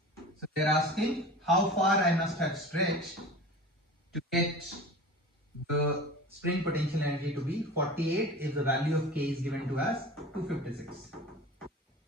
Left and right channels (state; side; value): normal; both; correlation 0.36